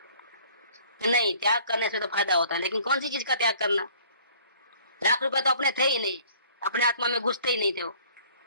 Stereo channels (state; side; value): inverted; both; correlation -0.54